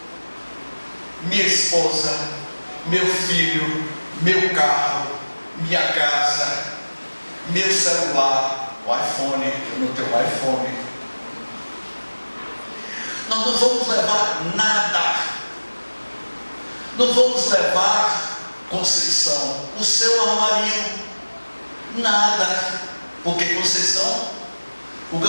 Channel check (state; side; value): inverted; both; correlation -1.00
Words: minha esposa, meu filho, meu carro, minha casa, meu celular, o iPhone, eu não tenho iPhone. Nós não vamos levar nada. Não vamos levar, Conceição, o seu armarinho, nada. Porque Conceição, o